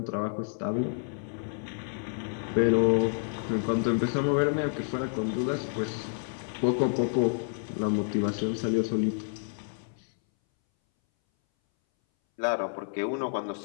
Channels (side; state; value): right; silent; 58 dB below the other